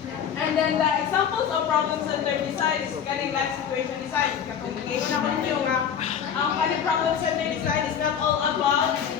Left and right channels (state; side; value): quieter; right; 8.1 dB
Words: And then the examples of problem-centered design is kaning life situation design. Ngayon na ko niyo nga ang kaning problem-centered design is not all about